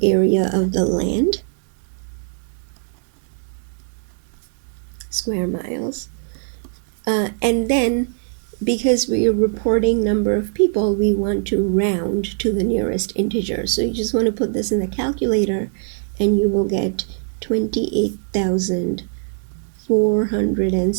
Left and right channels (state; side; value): silent; left; digital silence